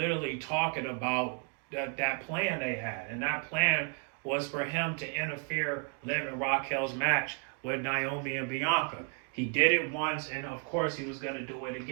talking about that plan they had, and that plan was for him to interfere Liv and Raquel's match with Naomi and Bianca. He did it once, and of course he was going to do it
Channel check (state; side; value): quieter; left; 38.6 dB